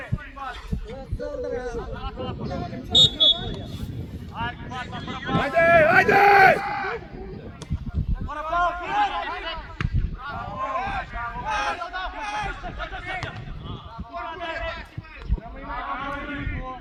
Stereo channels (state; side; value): identical; both; correlation 1.00